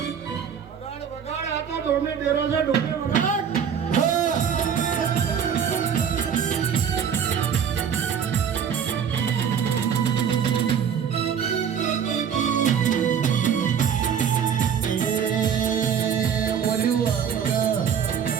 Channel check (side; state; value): left; quieter; 7.8 dB